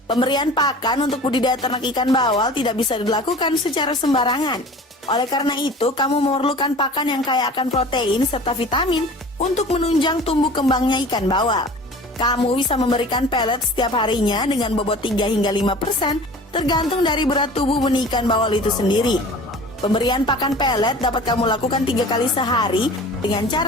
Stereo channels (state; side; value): normal; both; correlation 0.42